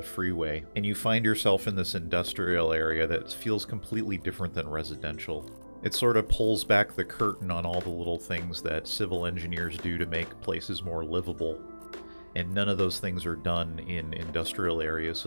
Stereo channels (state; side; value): inverted; both; correlation -1.00